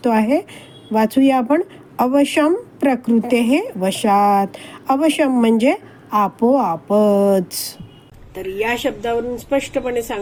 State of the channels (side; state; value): both; identical; correlation 1.00